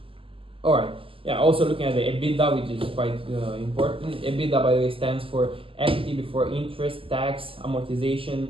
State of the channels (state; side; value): late; left; 0.26 ms